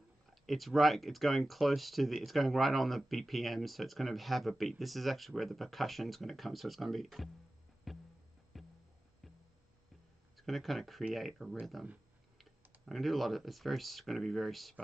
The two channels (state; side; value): normal; both; correlation 0.95